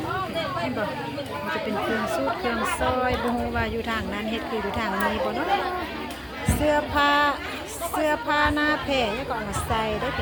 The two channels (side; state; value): both; identical; correlation 1.00